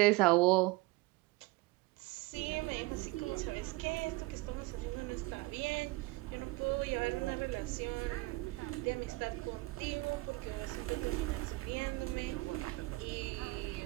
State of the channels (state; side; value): quieter; left; 22.1 dB